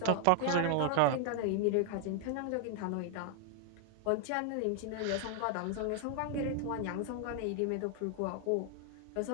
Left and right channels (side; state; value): both; different; correlation 0.00